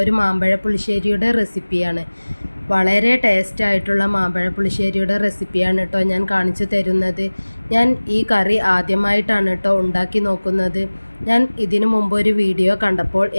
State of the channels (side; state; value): both; inverted; correlation -1.00